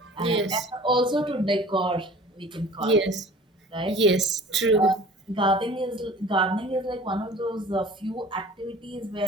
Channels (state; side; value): normal; both; correlation 0.45